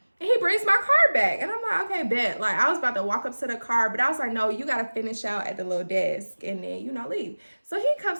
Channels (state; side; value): inverted; both; correlation -1.00